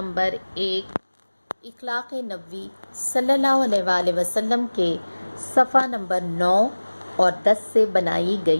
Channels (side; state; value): both; inverted; correlation -1.00